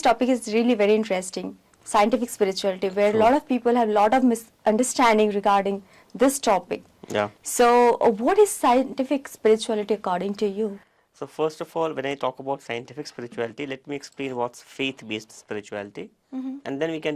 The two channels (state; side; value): identical; both; correlation 1.00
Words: topic is really very interesting. Scientific spirituality, where a lot of people have a lot of misunderstanding regarding this topic. Yeah. So what is scientific spirituality according to you? So first of all, when I talk about scientific spirituality, let me explain what's faith-based spirituality, and then we can